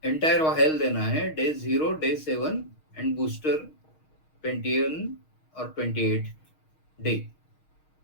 एंटायर वायल देना है, डे 0, डे 7 एंड बूस्टर 21 और 28 डे।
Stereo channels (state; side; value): late; right; 6.4 ms